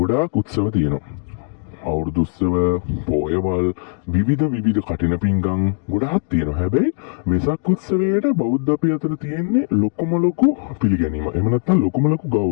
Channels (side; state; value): right; silent; 57 dB below the other